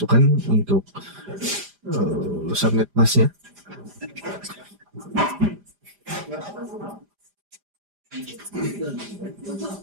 untuk subnet masnya.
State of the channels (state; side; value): late; left; 5.0 ms